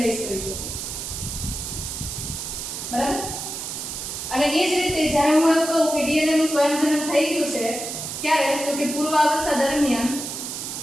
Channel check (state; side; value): noise; right; hiss, 6 dB below the sound